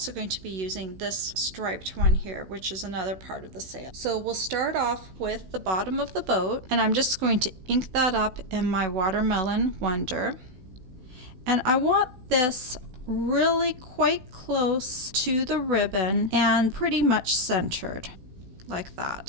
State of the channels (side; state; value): left; late; 16 ms